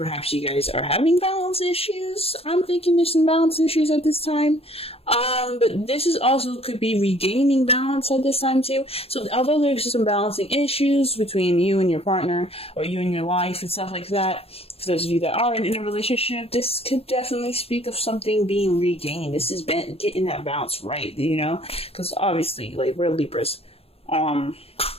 you guys are having balance issues. I'm thinking there's some balance issues at this time. But this is also could be regaining balance at this time too. So although there's some balancing issues between you and your partner or you and your life and stuff like that, for those of you that are in a relationship, this could definitely speak of something being regained. This is getting that balance right, you know? Because obviously, like, we're Libras.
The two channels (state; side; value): late; right; 0.28 ms